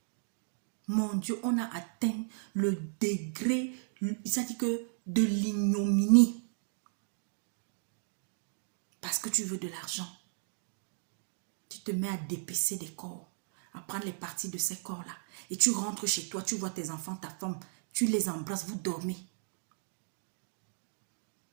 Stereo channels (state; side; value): silent; left; digital silence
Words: Mon Dieu, on a atteint le degré, ça dit que de l'ignominie. Parce que tu veux de l'argent. Tu te mets à dépecer des corps, à prendre les parties de ces corps-là. Et tu rentres chez toi, tu vois tes enfants, ta femme, tu les embrasses, vous dormez.